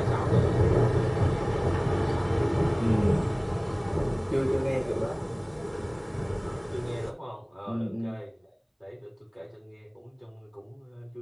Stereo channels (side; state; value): both; identical; correlation 1.00